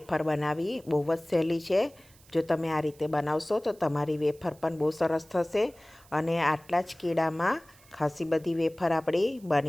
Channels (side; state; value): right; noise; hiss, 27 dB below the sound